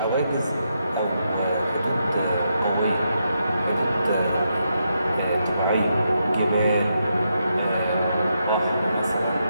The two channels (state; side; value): inverted; both; correlation -0.82